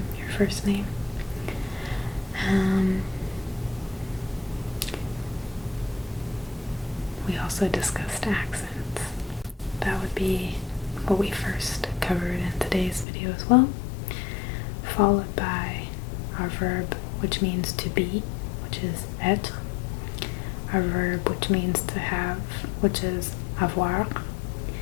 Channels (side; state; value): right; drops out; at 13.1 s